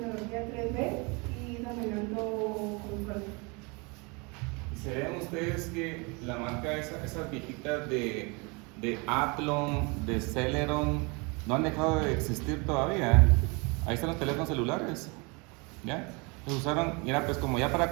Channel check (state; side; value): quieter; left; 29.5 dB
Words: 3D y dominando consolas. ¿Se ven ustedes que la marca, esas viejitas de Athlon, de Celeron, no han dejado de existir todavía? Ahí están los teléfonos celulares, ¿ya? Los usaron, y era pues como ya para